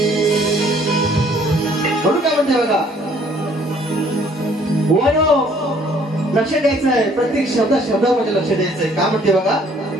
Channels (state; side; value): normal; both; correlation 0.60